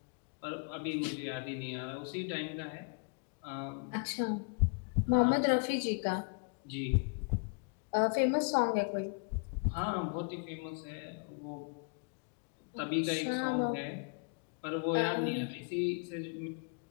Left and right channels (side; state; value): right; quieter; 37.4 dB